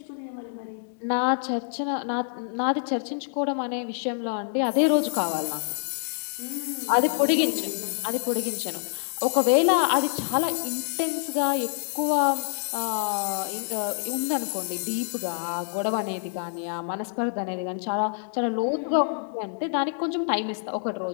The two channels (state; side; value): silent; right; digital silence